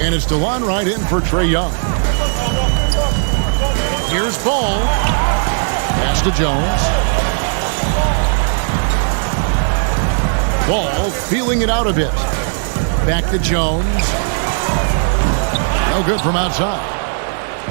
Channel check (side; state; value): left; silent; digital silence